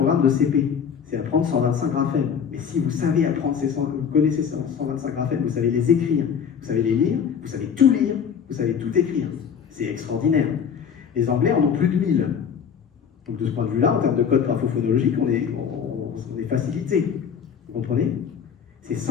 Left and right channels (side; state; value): right; quieter; 7.3 dB